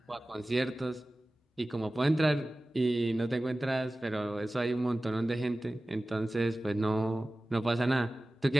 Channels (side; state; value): both; normal; correlation 0.96